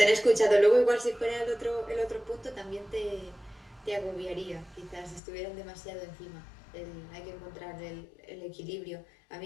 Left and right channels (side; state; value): right; drops out; at 5.2 s